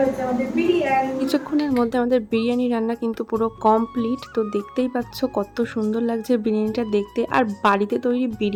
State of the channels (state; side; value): identical; both; correlation 1.00